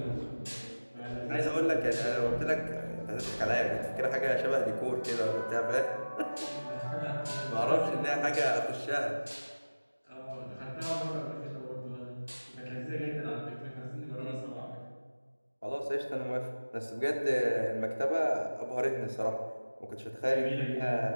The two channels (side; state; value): both; inverted; correlation -1.00